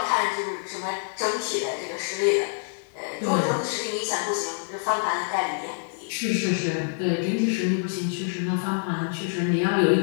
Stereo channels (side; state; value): right; silent; digital silence